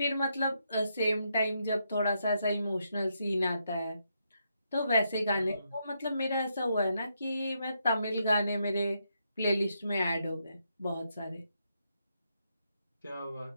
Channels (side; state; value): both; inverted; correlation -0.79